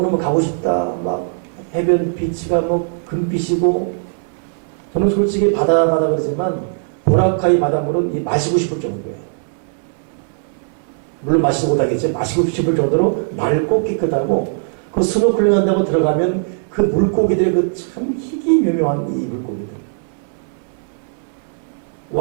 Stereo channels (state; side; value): silent; left; 64 dB below the other